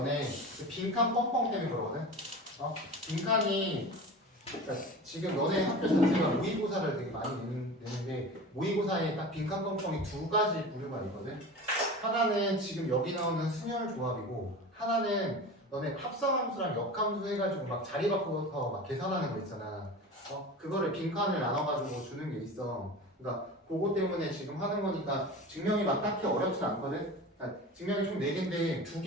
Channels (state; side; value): normal; both; correlation 0.33